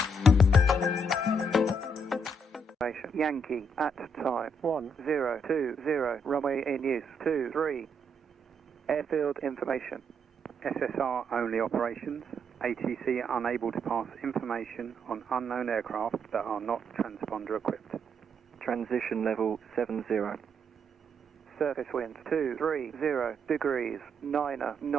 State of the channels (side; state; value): both; normal; correlation 0.75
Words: Yankee at time 1020, runway in use 23. Airfield information. SSR only operations. ATC unable to pass information on unknown aircraft that are not transponder equipped. Transition level 70. Surface wind 230 degrees, 9